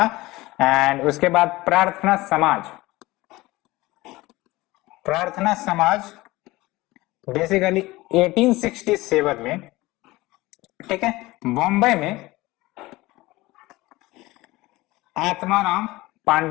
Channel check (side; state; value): right; quieter; 19.7 dB